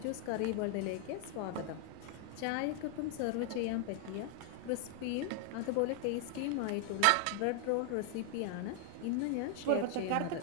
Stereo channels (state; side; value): different; both; correlation 0.00